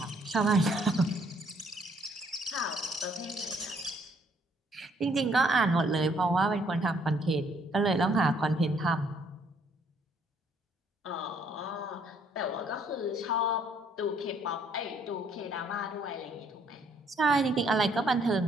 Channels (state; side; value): normal; both; correlation 0.66